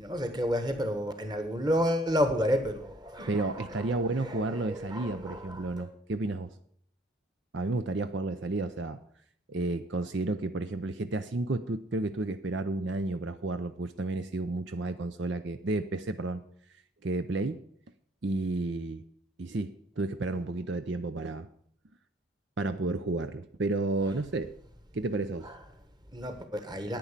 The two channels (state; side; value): normal; both; correlation 0.58